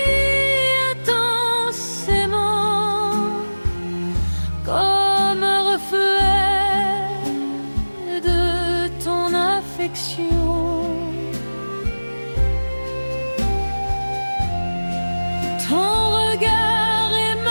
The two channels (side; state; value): both; inverted; correlation -1.00